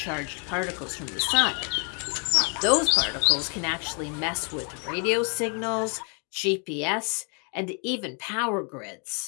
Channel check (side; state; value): right; quieter; 38.3 dB